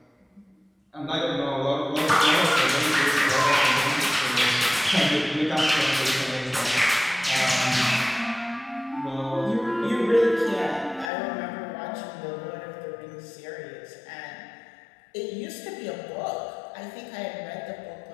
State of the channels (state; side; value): drops out; right; at 11.1 s